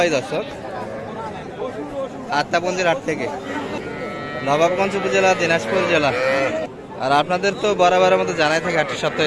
দর্শক আত্মাপঞ্জির হাট থেকে, নবাবগঞ্জ উপজেলা, দিনাজপুর জেলা। আর আপনাদের তো বরাবরের মতো জানাই থাকে হাটটি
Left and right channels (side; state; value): both; identical; correlation 1.00